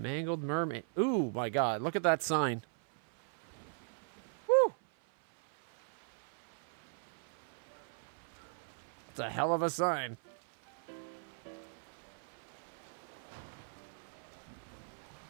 Mermaid. Ooh, my God. Look at that sign. Woo! It's a hell of a sign.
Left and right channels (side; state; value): left; silent; 52 dB below the other